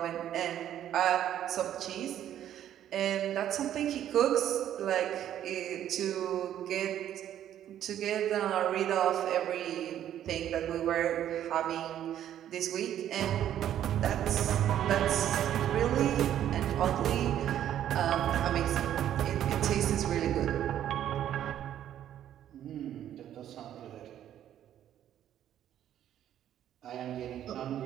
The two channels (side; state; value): left; quieter; 11.0 dB